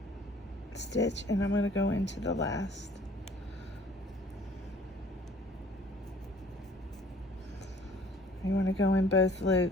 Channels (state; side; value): normal; both; correlation 0.55